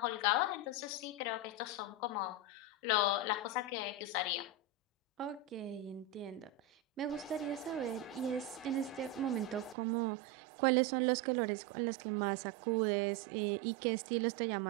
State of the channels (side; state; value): left; drops out; at 9.8 s